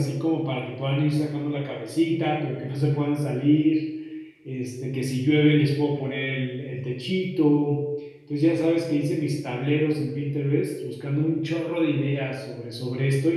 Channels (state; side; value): identical; both; correlation 1.00